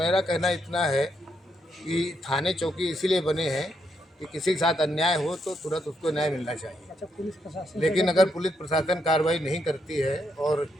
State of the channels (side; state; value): both; normal; correlation 0.78